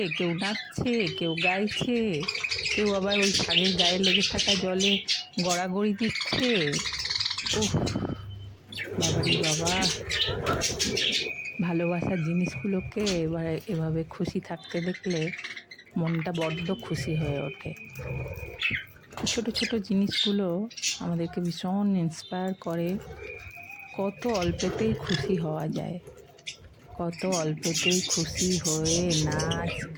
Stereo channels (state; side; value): identical; both; correlation 1.00